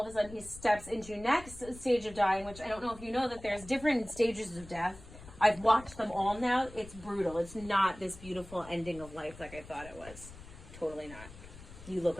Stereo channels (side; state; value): left; noise; rumble, 17 dB below the sound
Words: of a sudden he steps into next stage of dying, which I don't know if you know that there's different stages of death. I've watched them all now. It's brutal. It's not this beautiful ending of life like I thought it was. Totally not. You look